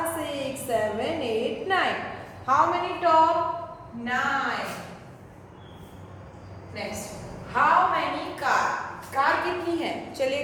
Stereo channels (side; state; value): both; identical; correlation 1.00